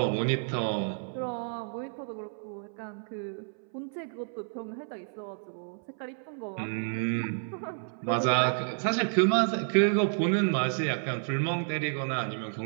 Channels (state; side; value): silent; left; 58 dB below the other